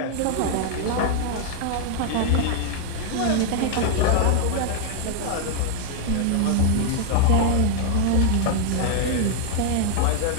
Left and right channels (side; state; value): both; different; correlation 0.00